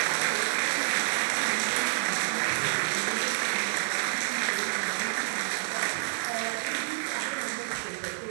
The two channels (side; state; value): left; silent; digital silence